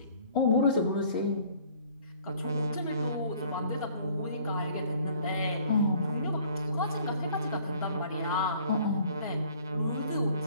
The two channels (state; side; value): inverted; both; correlation -0.55